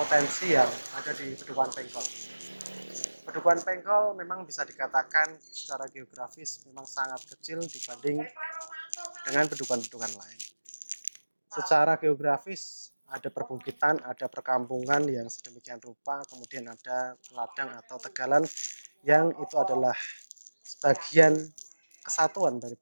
yang ada di Padukuhan Pengkol. Padukuhan Pengkol memang bisa dikatakan secara geografis memang sangat kecil dibanding dengan pedukuhan-pedukuhan lain. Secara geografis ada perbukitan, ada perkampungan yang sedemikian rupa, kemudian ada ladang atau tegalan yang itu adalah sebagian kesatuan dari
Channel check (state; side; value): inverted; both; correlation -1.00